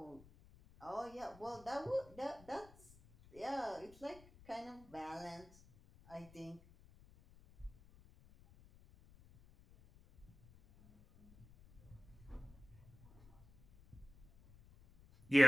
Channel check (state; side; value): noise; left; rumble, 22 dB below the sound